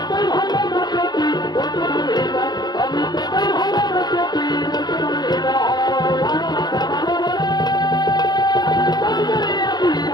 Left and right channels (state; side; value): late; right; 0.20 ms